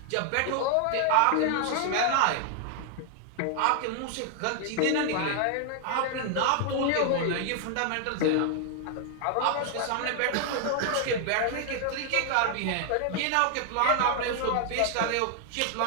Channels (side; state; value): both; different; correlation 0.00